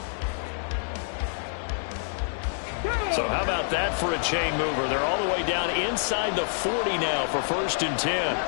So how about that for a chain mover? They're all the way down inside the 40 now for 1st and 10.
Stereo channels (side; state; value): right; silent; digital silence